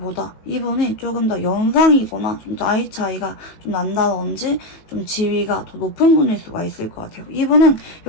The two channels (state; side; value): late; right; 19 ms